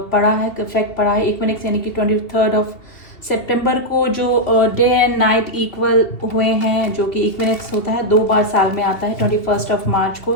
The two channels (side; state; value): right; late; 2.7 ms